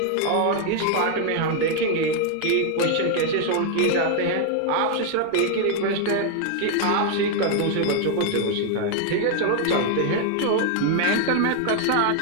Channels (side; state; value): both; different; correlation 0.00